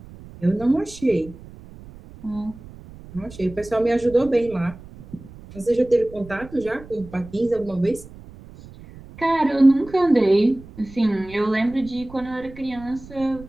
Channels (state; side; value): noise; right; rumble, 18 dB below the sound